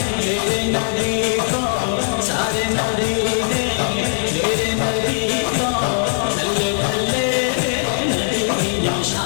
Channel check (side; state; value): right; silent; 66 dB below the other